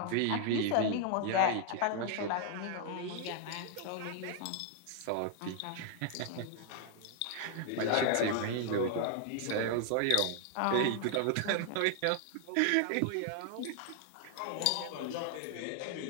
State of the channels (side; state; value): both; different; correlation 0.00